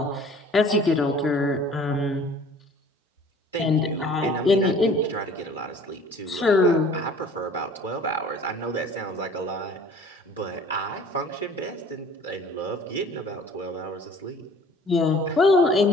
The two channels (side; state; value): both; normal; correlation 0.50